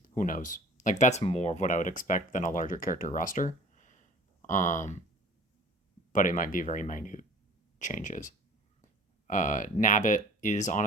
Who knows? Like, that's more of what I would expect than a larger character roster. Um, but it might be very minute changes. Nabbit is on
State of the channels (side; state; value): both; normal; correlation 0.47